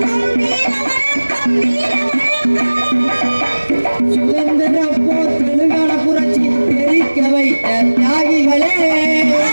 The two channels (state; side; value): inverted; both; correlation -1.00